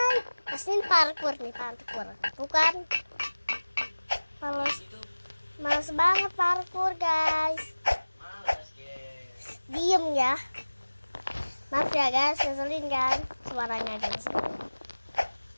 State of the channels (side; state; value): both; inverted; correlation -1.00